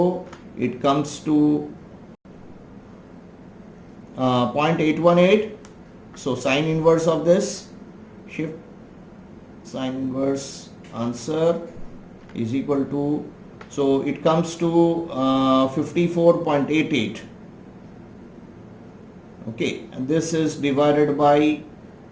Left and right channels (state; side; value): identical; both; correlation 1.00